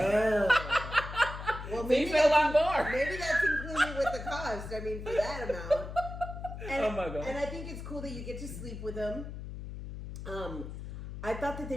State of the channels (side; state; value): left; noise; hum, 9 dB below the sound